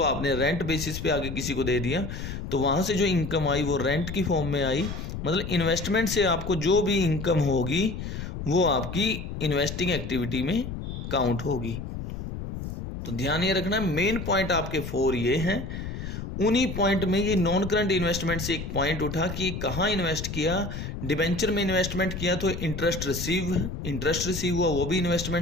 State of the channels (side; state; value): left; noise; rumble, 7 dB below the sound